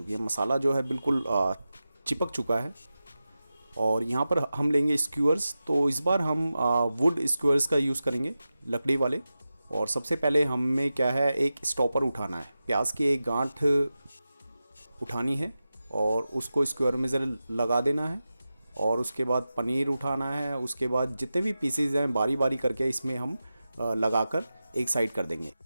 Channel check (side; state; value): both; inverted; correlation -0.93